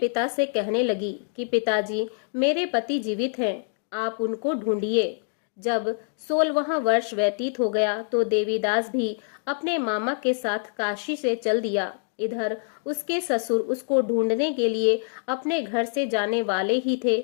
से कहने लगी कि पिताजी, मेरे पति जीवित हैं, आप उनको ढूंढिए। जब 16वां वर्ष व्यतीत हो गया तो देवीदास भी अपने मामा के साथ काशी से चल दिया। इधर उसके ससुर उसको ढूंढने के लिए अपने घर से जाने वाले ही थे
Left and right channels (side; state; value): right; silent; 60 dB below the other